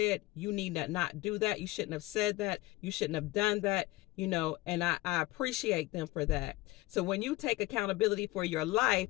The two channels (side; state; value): right; quieter; 19.7 dB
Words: you need to not do that. You shouldn't have said that. You shouldn't have done that, and I appreciate them for that. So when you take accountability for your life,